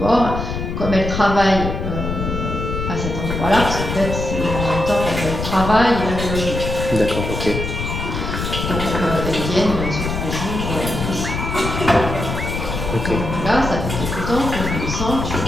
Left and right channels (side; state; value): left; noise; rumble, 4 dB below the sound